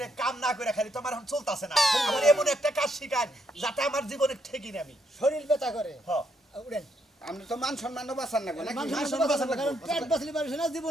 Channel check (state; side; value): normal; both; correlation 0.75